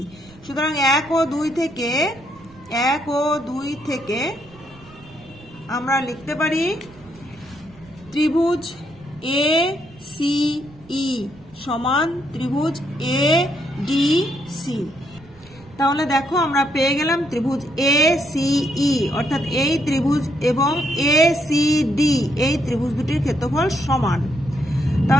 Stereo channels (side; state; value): right; noise; rumble, 24 dB below the sound